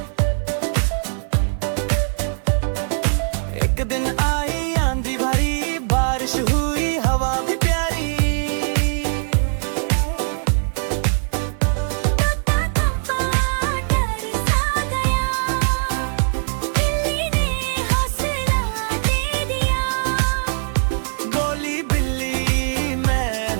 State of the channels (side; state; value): left; silent; 57 dB below the other